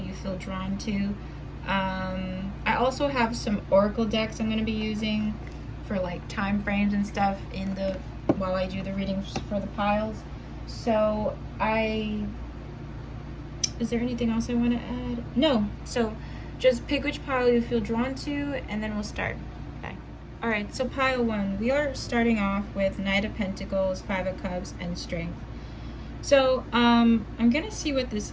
feel drawn to. I also have some oracle decks I'm going to be using for like time frames and stuff while I do the readings for the piles. So is there anything else I want to add? No. So just pick which pile you feel drawn to and then we'll start. Bye. Alright, so pile 1. We are starting off with Knight of Pentacles, 5 of Cups, and Strength. So I'm going to see what this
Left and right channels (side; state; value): both; identical; correlation 1.00